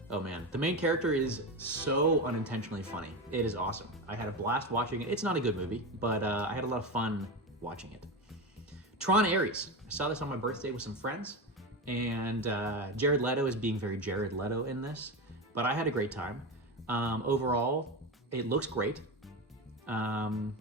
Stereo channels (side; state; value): both; normal; correlation 0.19